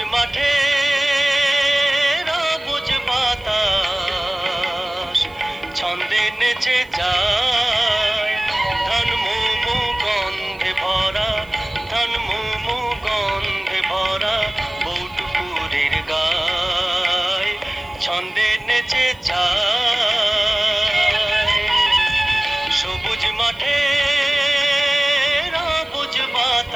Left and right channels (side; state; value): right; noise; hiss, 30 dB below the sound